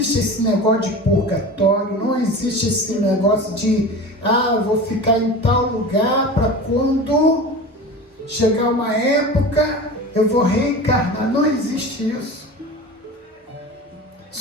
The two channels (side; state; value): both; normal; correlation 0.33